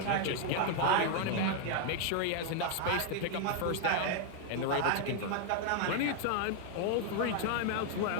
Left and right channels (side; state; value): both; different; correlation 0.00